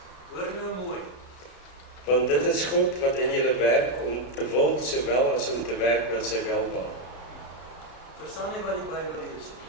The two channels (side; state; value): right; late; 33 ms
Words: Hoor nou mooi. Want dit is God wat in julle werk om te wil, sowel as om te werk na sy welbehae. Verstaan nie wat die Bybel lees nie.